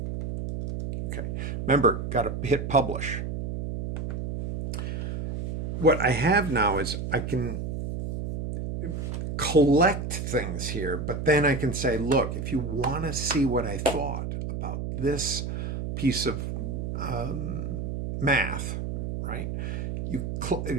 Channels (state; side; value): noise; right; hum, 4 dB below the sound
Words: Okay. Remember, got to hit publish. What I have now is I can collect things here, but then I can say, look, if you want to see what I thought about this piece of math, right?